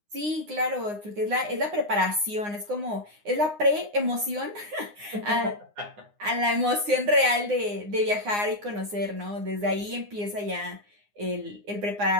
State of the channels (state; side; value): late; left; 9.7 ms